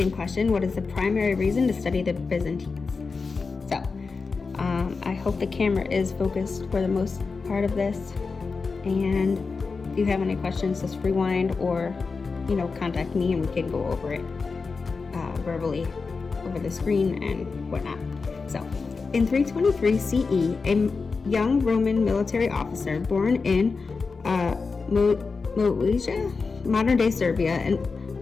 question. What is the primary reason to study the Byzantines? So, I hope the camera is focused for the most part of this, and if you have any questions, just rewind or contact me and we can go over it verbally over the screen and whatnot. So in 323 CE, a young Roman military officer born in Moesia, modern-day Serbia,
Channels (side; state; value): right; quieter; 4.6 dB